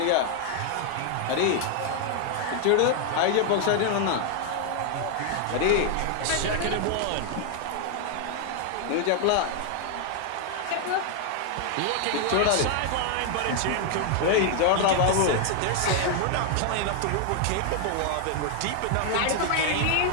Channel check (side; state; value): both; different; correlation 0.00